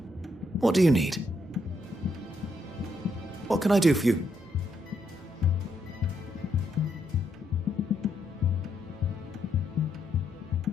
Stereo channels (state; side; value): normal; both; correlation 0.77